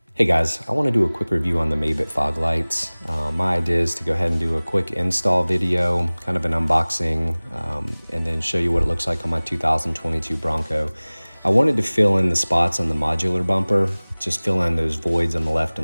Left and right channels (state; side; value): inverted; both; correlation -1.00